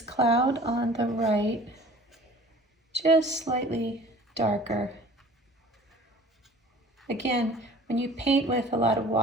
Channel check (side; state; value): both; normal; correlation 0.46